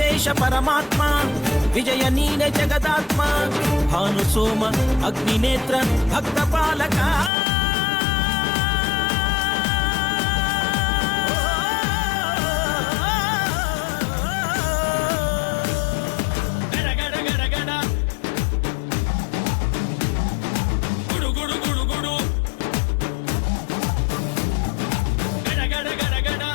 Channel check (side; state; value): right; drops out; at 7.3 s